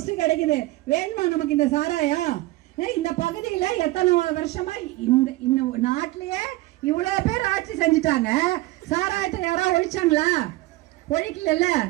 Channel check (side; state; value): left; quieter; 19.0 dB